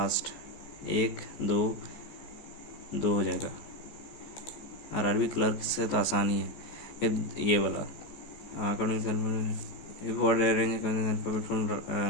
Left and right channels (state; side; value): late; right; 14 ms